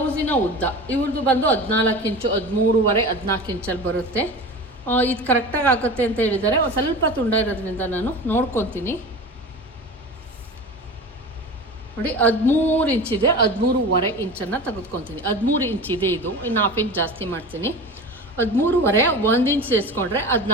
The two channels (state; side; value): normal; both; correlation 0.33